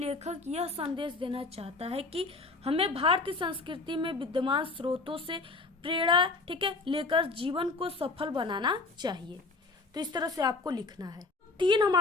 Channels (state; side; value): quieter; right; 3.7 dB